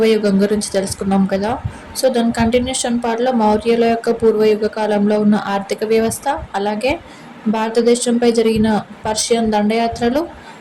గురించి తెలుసుకున్నాం కదా. సో దాని కంటిన్యూషన్ పార్ట్లో మౌర్యుల యొక్క పూర్వయుగ కాలంలో ఉన్న ఆర్థిక వ్యవస్థ, అలాగే భారతదేశంపై జరిగిన పర్షియన్ దండయాత్రలు,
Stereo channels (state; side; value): identical; both; correlation 1.00